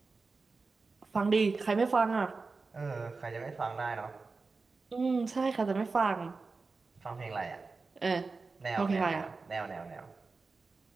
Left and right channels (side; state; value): left; quieter; 4.1 dB